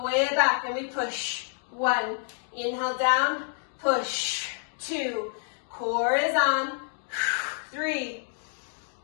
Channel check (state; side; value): silent; right; 59 dB below the other